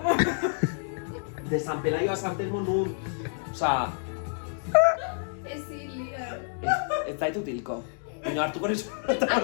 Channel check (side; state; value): right; silent; digital silence